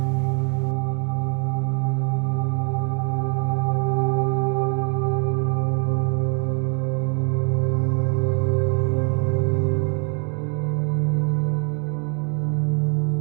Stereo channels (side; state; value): left; quieter; 39.0 dB